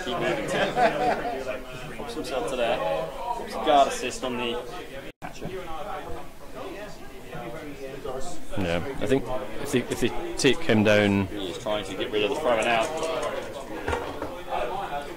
keep moving to? Pops himself to there. Pops a guard assist on the catcher. Yeah, I think if they take him down. He's trying to get rid of the throwing out.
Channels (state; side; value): identical; both; correlation 1.00